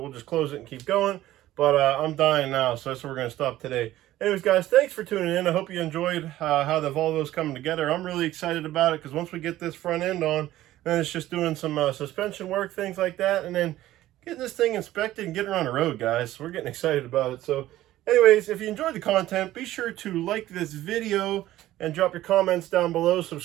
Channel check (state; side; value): quieter; left; 14.8 dB